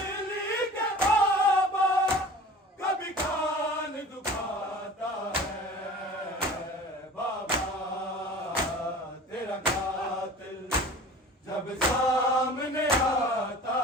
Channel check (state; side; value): normal; both; correlation 0.41